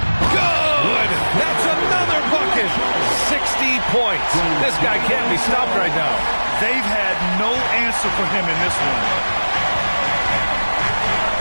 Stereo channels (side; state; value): both; inverted; correlation -1.00